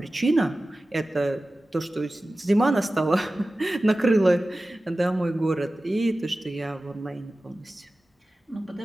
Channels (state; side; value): normal; both; correlation 0.96